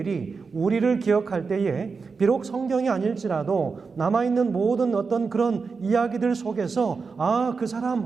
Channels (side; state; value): left; quieter; 4.9 dB